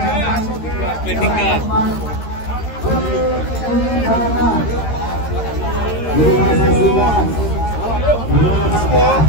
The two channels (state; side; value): late; right; 13 ms